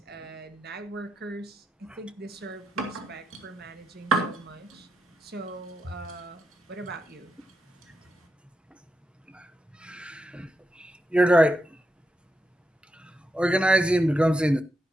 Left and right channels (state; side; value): normal; both; correlation 0.85